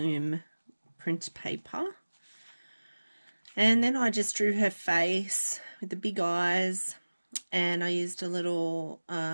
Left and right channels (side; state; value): both; inverted; correlation -1.00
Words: print paper. And then I just drew her face with the big eyes, and I used a little